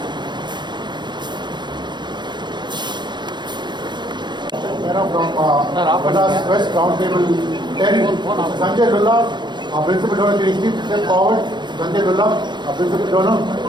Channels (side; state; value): left; late; 0.22 ms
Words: From Madras West Roundtable 10, Sanjay Lulla, our principal donor, can you please step forward? Sanjay Lulla, our principal donor.